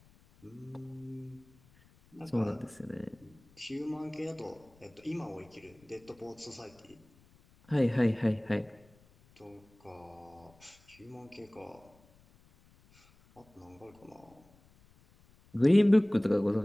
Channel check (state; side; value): noise; left; rumble, 29 dB below the sound